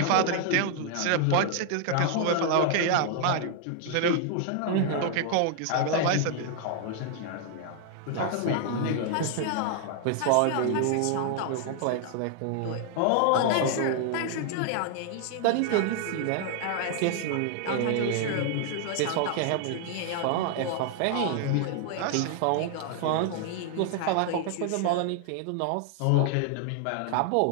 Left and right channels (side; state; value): both; different; correlation 0.00